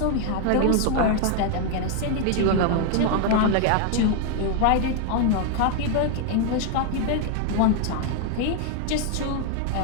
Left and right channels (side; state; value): both; different; correlation 0.00